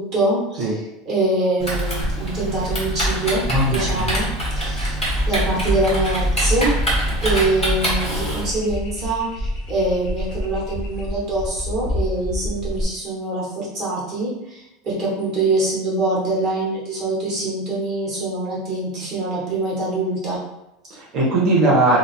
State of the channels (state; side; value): normal; both; correlation 0.32